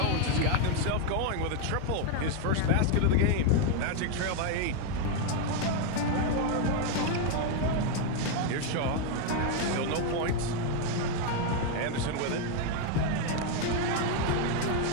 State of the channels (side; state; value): both; different; correlation 0.01